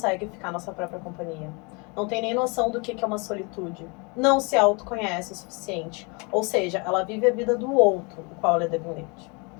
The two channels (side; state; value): right; quieter; 30.9 dB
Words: ficar na sua própria companhia, não tem nem noção do que é uma solitude, não se autoconhece o suficiente, ou seja, ela vive a vida do outro, do qual ela é dependente.